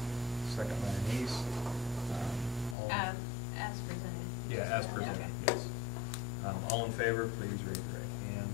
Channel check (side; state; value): right; drops out; at 2.8 s